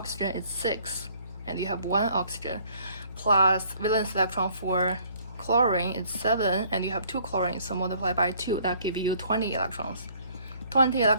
is 6, and you have 1 oxygen, plus valence electron for chlorine is 7, and you have 2 chlorine, so multiply by 2, that gives you 20 electrons. 20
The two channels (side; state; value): both; inverted; correlation -0.60